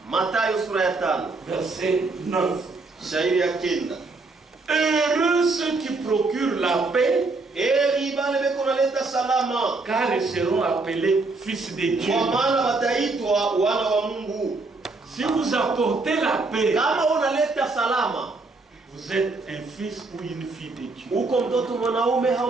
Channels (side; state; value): left; quieter; 3.6 dB